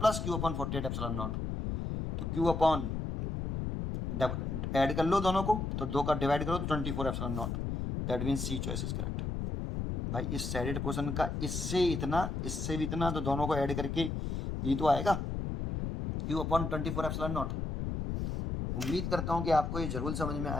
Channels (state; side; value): noise; left; rumble, 3 dB below the sound